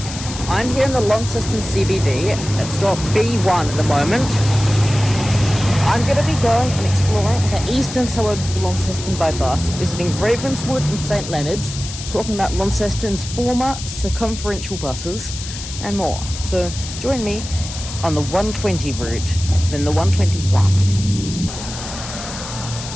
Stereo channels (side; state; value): left; noise; hiss, 10 dB below the sound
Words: I'm here in the Launceston CBD at stop B1 at the moment. I'm going to be going and exploring the eastern suburbs of Launceston by bus, visiting Ravenswood and St Leonards, talking about Launceston's former circumferential buses and more. So join me on the 120 route, then the 121.